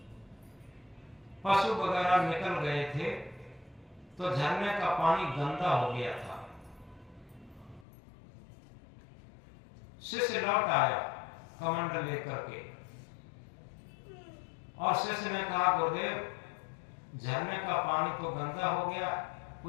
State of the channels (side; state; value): right; drops out; at 7.9 s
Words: पशु वगैरह निकल गए थे, तो झरने का पानी गंदा हो गया था। शिष्य लौट आया कमंडल लेकर के और शिष्य ने कहा गुरुदेव झरने का पानी तो गंदा हो गया,